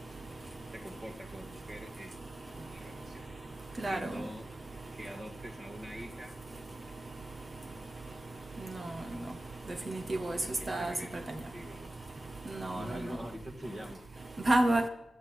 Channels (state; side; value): normal; both; correlation 0.95